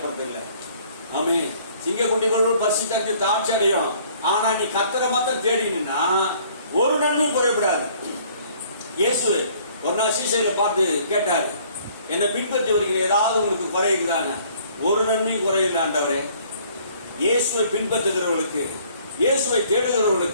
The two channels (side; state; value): both; inverted; correlation -0.58